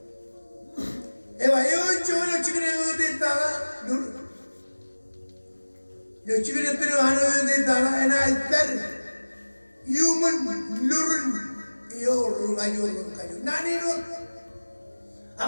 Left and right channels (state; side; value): inverted; both; correlation -1.00